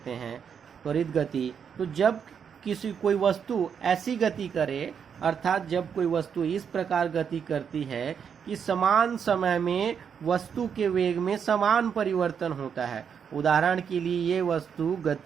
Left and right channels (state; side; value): quieter; left; 7.3 dB